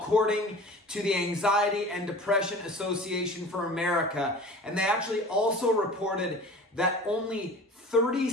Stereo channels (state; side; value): normal; both; correlation 0.40